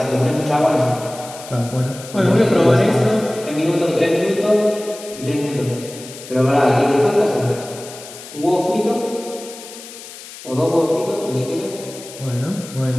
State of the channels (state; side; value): noise; left; hiss, 15 dB below the sound